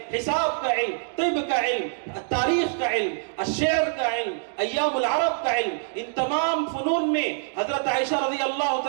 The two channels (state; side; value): silent; left; digital silence